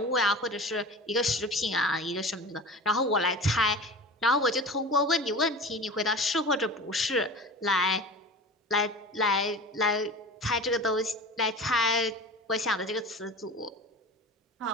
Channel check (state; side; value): normal; both; correlation 0.34